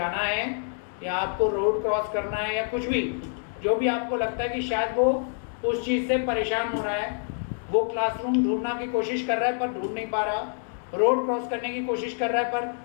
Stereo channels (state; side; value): silent; right; digital silence